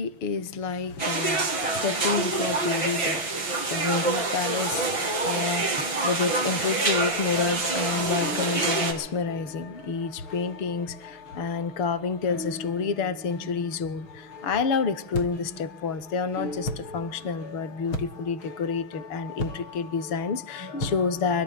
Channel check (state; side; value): late; right; 6.0 ms